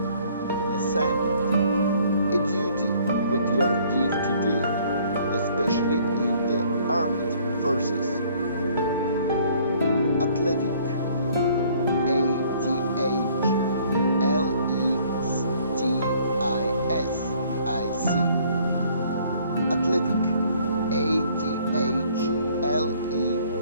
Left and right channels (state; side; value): inverted; both; correlation -0.60